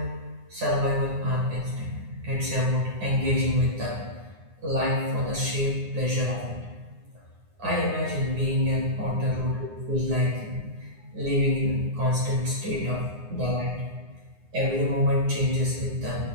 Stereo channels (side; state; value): left; late; 9.7 ms